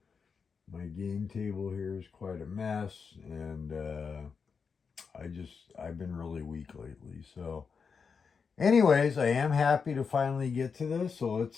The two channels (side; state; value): right; quieter; 5.7 dB